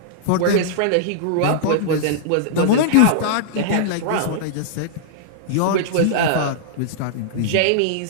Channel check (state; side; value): different; both; correlation -0.02